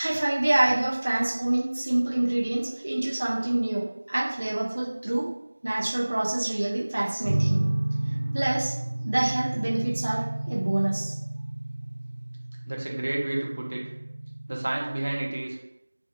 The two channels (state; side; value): inverted; both; correlation -1.00